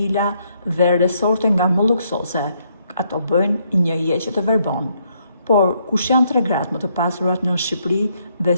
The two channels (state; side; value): inverted; both; correlation -0.73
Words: dhe resorte nga më luksoze, ato bëjnë një jeqe të verbon. Por kush janë tre gratë më të pasurat në Shqipëri dhe